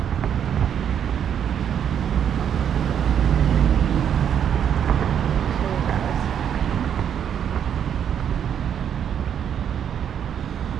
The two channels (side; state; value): left; quieter; 8.8 dB